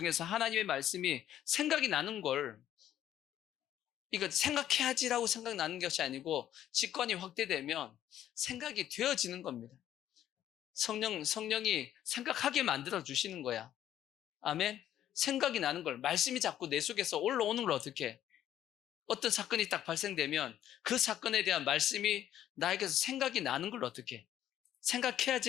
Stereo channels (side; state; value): right; quieter; 11.5 dB